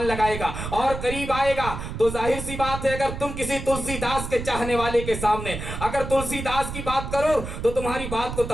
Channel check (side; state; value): right; noise; rumble, 7 dB below the sound